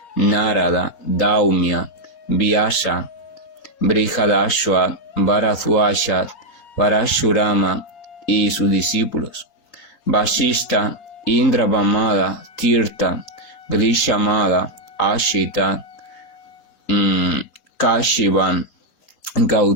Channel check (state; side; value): late; right; 3.9 ms